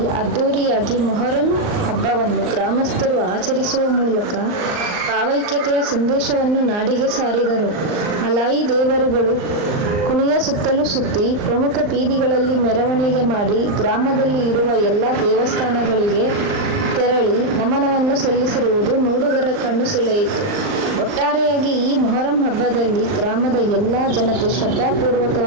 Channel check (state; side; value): late; left; 39 ms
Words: ಅದ್ದೂರಿಯಾಗಿ ಮೊಹರಂ ಹಬ್ಬವನ್ನು ಗ್ರಾಮಸ್ಥರು ಆಚರಿಸುವ ಮೂಲಕ ಭಾವೈಕ್ಯತೆಯ ಸಂದೇಶವನ್ನು ನಾಡಿಗೆ ಸಾರಿದರು. ಅಲಾಯಿ ದೇವರುಗಳು ಕುಣಿಯ ಸುತ್ತಲೂ ಸುತ್ತಿ ಪ್ರಮುಖ ಬೀದಿಗಳಲ್ಲಿ ಮೆರವಣಿಗೆ ಮಾಡಿ ಗ್ರಾಮದಲ್ಲಿ ಇರುವ ಎಲ್ಲ ದೇವಸ್ಥಾನಗಳಿಗೆ ತೆರಳಿ ನಮನವನ್ನು ಸಲ್ಲಿಸಿರುವುದು ನೋಡುಗರ ಕಣ್ಣು ಸೆಳೆಯಿತು. ಒಟ್ಟಾರೆಯಾಗಿ ಈ ಮೊಹರಂ ಹಬ್ಬದಲ್ಲಿ ಗ್ರಾಮದ ಎಲ್ಲ ಜನತೆ